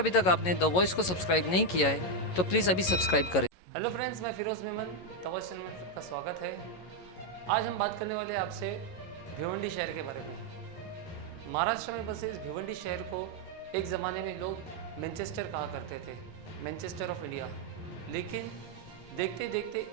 तक आपने द वॉइस को सब्सक्राइब नहीं किया है तो प्लीज़ अभी सब्सक्राइब करें। हेलो फ्रेंड्स, मैं Firoz Memon, the voice channel में आपका स्वागत है। आज हम बात करने वाले हैं आपसे भिवंडी शहर के बारे में। महाराष्ट्र में बसे इस भिवंडी शहर को एक ज़माने में लोग मैनचेस्टर कहा करते थे, मैनचेस्टर ऑफ इंडिया। लेकिन देखते देखते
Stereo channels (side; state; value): right; late; 11 ms